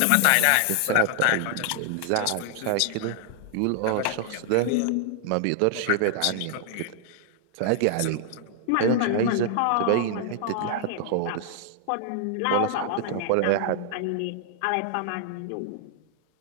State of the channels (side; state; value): both; different; correlation 0.00